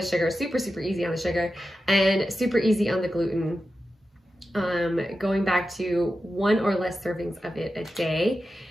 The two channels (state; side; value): normal; both; correlation 0.91